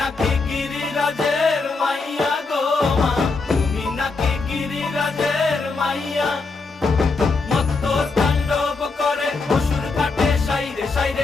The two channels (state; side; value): quieter; right; 4.0 dB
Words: গিরিরাজের মাইয়া গো মা, তুমি নাকি গিরিরাজের মাইয়া। মত্ত তাণ্ডব করে অসুর কাটে সাইরে